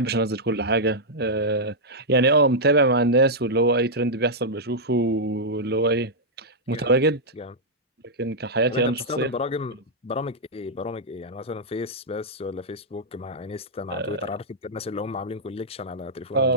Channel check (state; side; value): normal; both; correlation -0.07